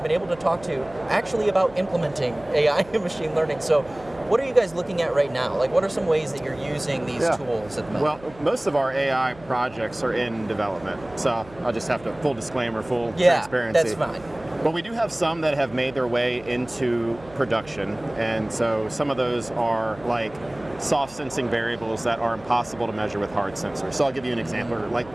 been able to talk to actually about implementing AI and machine learning. So what are you guys looking at right now? Like, what are some ways that you're using these tools at the moment? Well, most of our AI projects are in development, so I'll just have to, full disclaimer, full transparency. That's fine. But we do have some that have made their way into production, and so some of those are like soft sensing variables that are impossible to measure with hard sensors. So I'll give you an example, like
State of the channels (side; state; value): right; noise; hum, 21 dB below the sound